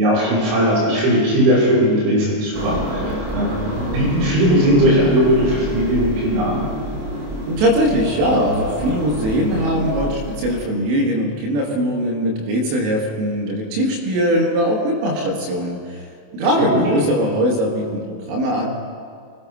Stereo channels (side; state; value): left; late; 28 ms